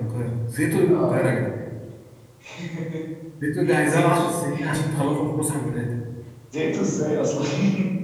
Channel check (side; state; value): both; identical; correlation 1.00